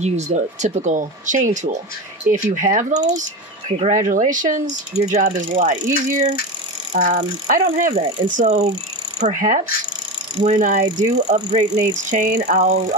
the typical chain tool. If you have those, congratulations, your job is a lot easier. I don't have that, and so perhaps when I do upgrade Nate's chain,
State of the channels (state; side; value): normal; both; correlation 0.22